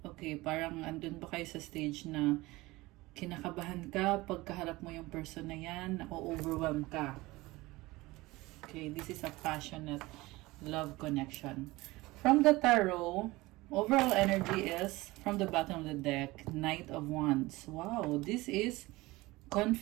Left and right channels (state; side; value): quieter; left; 20.5 dB